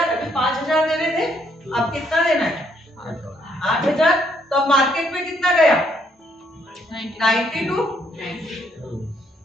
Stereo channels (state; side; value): normal; both; correlation 0.71